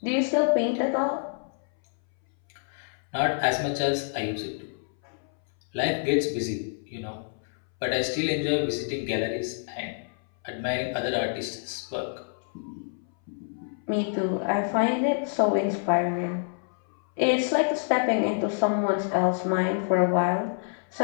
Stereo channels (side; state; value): right; silent; 60 dB below the other